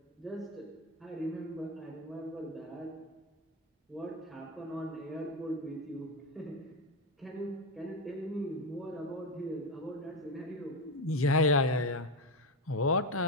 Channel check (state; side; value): normal; both; correlation 0.13